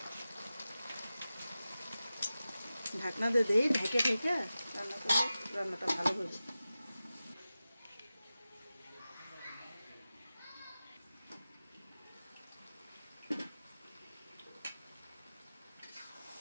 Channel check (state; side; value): inverted; both; correlation -0.94